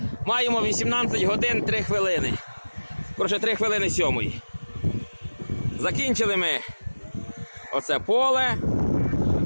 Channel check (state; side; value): inverted; both; correlation -1.00